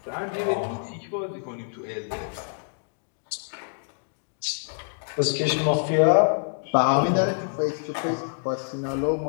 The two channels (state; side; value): silent; right; digital silence